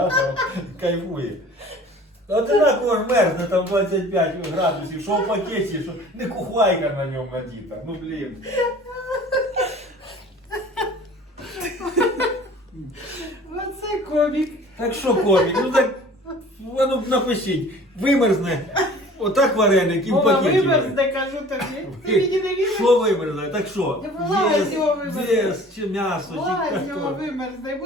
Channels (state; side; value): normal; both; correlation 0.47